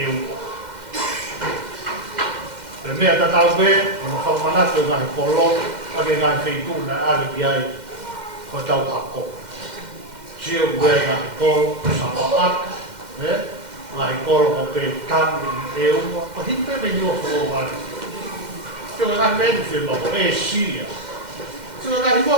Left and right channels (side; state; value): left; late; 2.1 ms